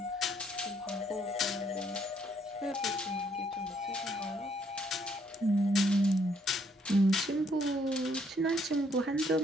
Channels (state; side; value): normal; both; correlation 0.69